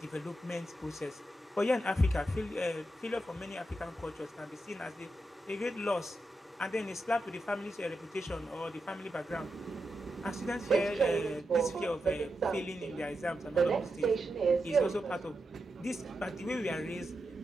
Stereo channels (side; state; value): both; normal; correlation 0.87